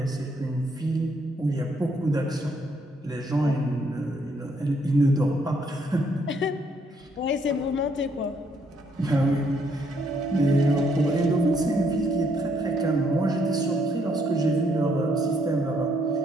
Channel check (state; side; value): normal; both; correlation 0.71